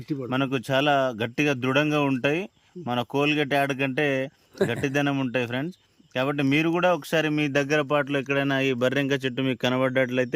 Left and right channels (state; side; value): identical; both; correlation 1.00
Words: మనకు చాలా గట్టిగా దృఢంగా ఉంటాయి. మన కోల్గేట్ యాడ్ కంటే గట్టిదనం ఉంటాయి ఫ్రెండ్స్. కాబట్టి మీరు కూడా ఒకసారి మీ దగ్గర పాటలో ఎక్కడైనా ఈ బర్రెంక చెట్టు మీకు